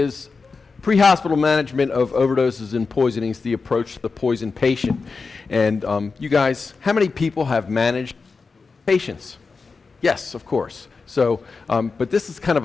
Pre-Hospital Management of Overdoses and Poisonings, the Approach to the Poison Patient. And you guys, how many people have managed patients? Yes, of course. So, but this is kind of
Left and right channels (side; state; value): right; quieter; 4.5 dB